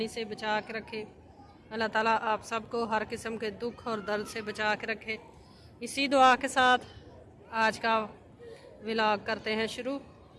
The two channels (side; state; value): both; identical; correlation 1.00